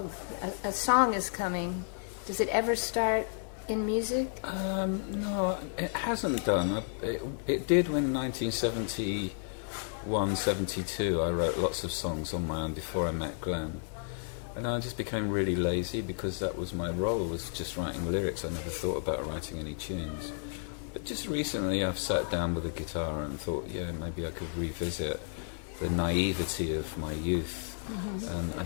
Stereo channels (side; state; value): right; silent; 56 dB below the other